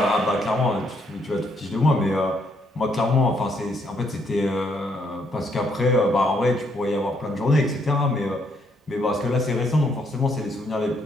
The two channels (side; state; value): both; normal; correlation 0.72